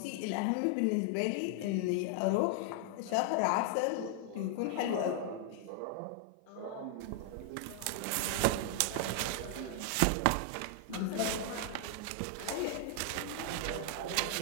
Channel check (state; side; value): different; both; correlation 0.00